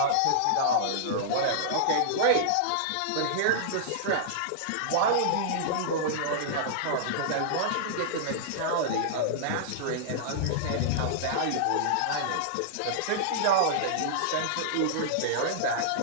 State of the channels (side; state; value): both; different; correlation -0.02